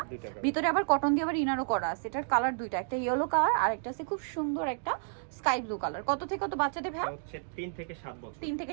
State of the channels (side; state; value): left; silent; digital silence